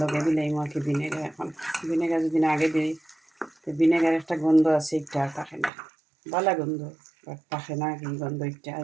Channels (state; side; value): drops out; left; at 5.7 s